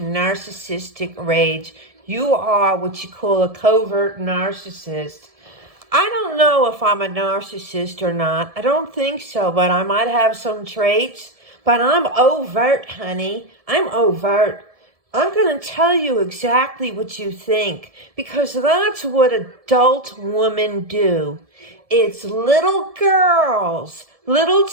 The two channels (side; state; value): left; late; 1.7 ms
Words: rage. You are what you call a covert narcissist. I don't know if I'm a narcissist or not. I don't think so, but I might have some traits. But I'm overt, honey. I'm overt. I'm going to tell you exactly what you think, because that's what adult women do. It's little girls, little